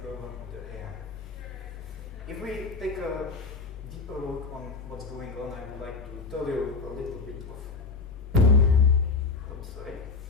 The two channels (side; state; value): right; quieter; 4.3 dB